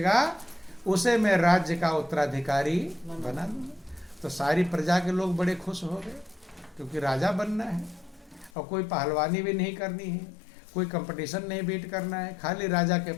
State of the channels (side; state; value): right; drops out; at 8.5 s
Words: उसे मैं राज्य का उत्तराधिकारी बना दूंगा। तो सारी प्रजा के लोग बड़े खुश हो गए, क्योंकि राजा बनना है और कोई पहलवानी भी नहीं करनी है, कोई कंपटीशन नहीं बीट करना है, खाली राजा के